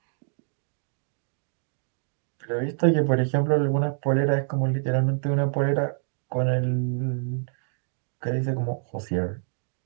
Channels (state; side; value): silent; left; 60 dB below the other